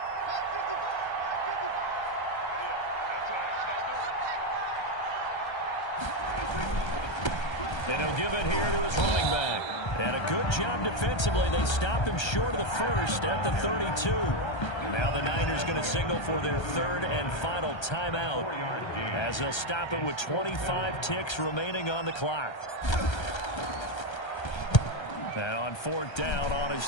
And he'll give it here to his running back. And a good job defensively. They stopped him short of the first at the 32. Now the Niners going to signal for their 3rd and final timeout as they'll stop it with 25 ticks remaining on the clock. And on 4th down, on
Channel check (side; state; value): right; late; 1.3 ms